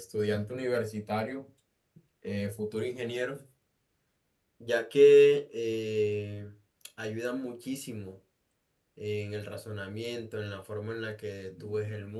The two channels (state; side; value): identical; both; correlation 1.00